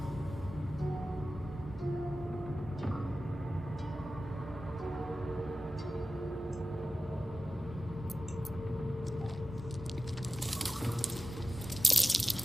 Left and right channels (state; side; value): normal; both; correlation 0.95